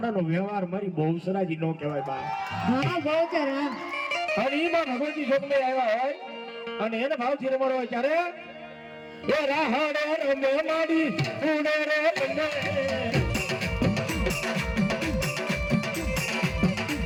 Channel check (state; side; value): identical; both; correlation 1.00